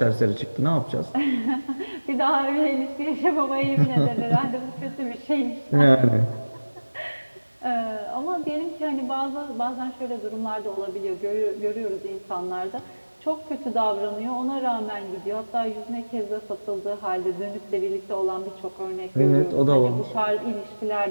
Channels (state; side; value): inverted; both; correlation -1.00